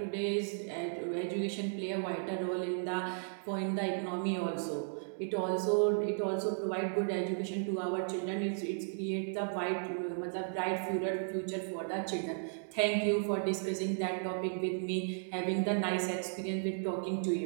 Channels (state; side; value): silent; left; digital silence